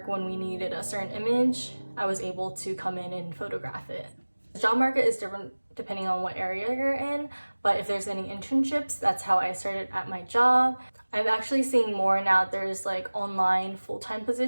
when we needed a certain image. I was able to come in and photograph it. The job market is different depending on what area you're in, but if there's any internships, that's how I started at my job. I'm actually seeing more now. There's like online full-time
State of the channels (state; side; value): inverted; both; correlation -1.00